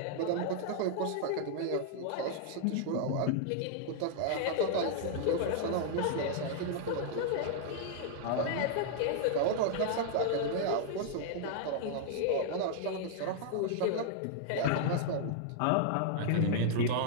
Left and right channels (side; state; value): both; different; correlation -0.01